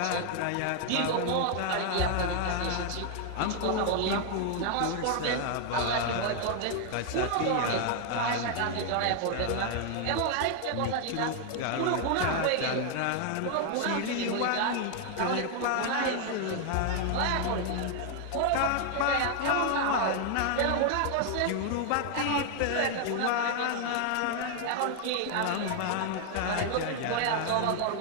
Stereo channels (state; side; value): different; both; correlation 0.00